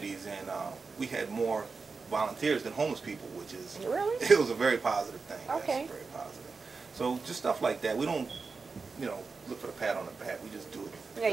and we had more volunteers than homeless people, which is Really? it was a very positive thing. Okay. Yes, very positive. So just stuff like that. We don't, look for the pat on the back. We just do it. Yeah,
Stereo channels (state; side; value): quieter; left; 4.5 dB